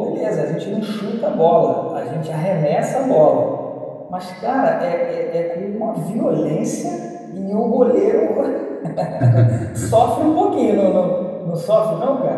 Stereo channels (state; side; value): identical; both; correlation 1.00